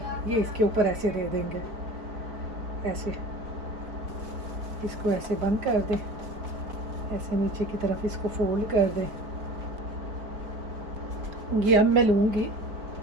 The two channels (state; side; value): late; left; 4.5 ms